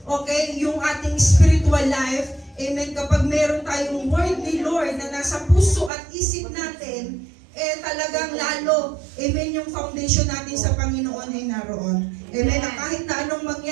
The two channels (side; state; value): left; drops out; at 5.9 s